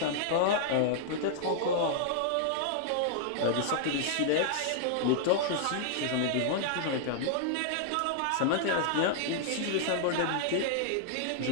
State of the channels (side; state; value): both; different; correlation -0.01